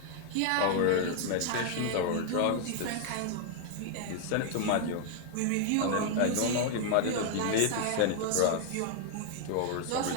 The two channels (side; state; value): both; different; correlation 0.00